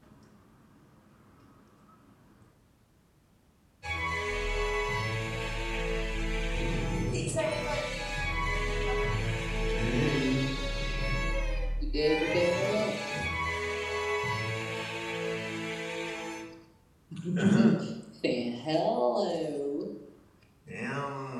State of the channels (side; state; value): both; identical; correlation 1.00